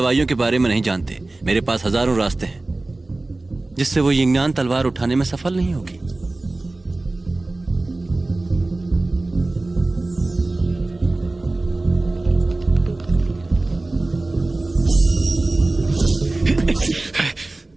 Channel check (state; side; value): quieter; left; 3.0 dB